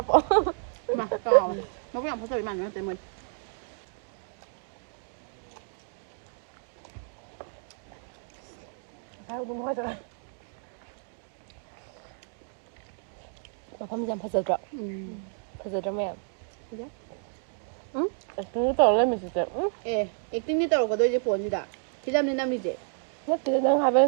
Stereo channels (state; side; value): silent; left; 58 dB below the other